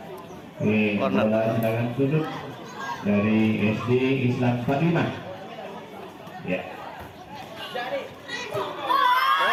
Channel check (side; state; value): both; identical; correlation 1.00